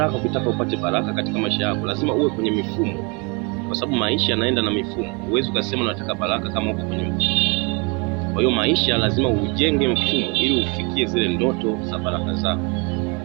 ukitaka upate baraka katika maisha yako lazima uwe kwenye mifumo, kwa sababu maisha yanaenda na mifumo. Huwezi ukasema unataka baraka kama uko kwenye mfumo. Kwa hiyo maisha lazima ujenge mfumo ili ufikie zile ndoto za baraka zako.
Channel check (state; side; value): quieter; left; 31.3 dB